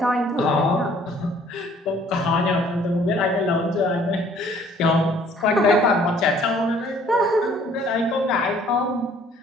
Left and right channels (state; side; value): normal; both; correlation 0.58